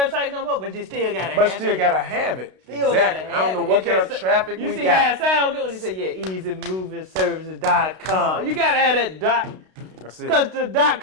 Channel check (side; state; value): left; late; 32 ms